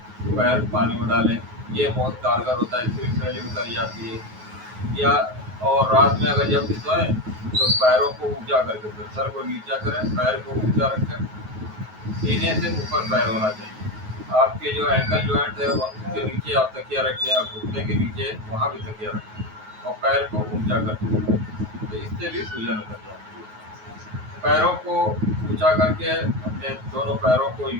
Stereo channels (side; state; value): left; late; 9.4 ms